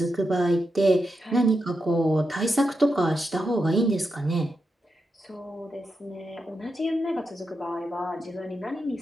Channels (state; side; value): normal; both; correlation 0.87